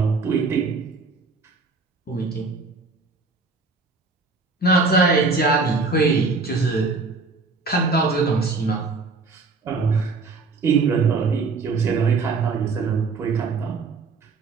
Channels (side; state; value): left; quieter; 4.1 dB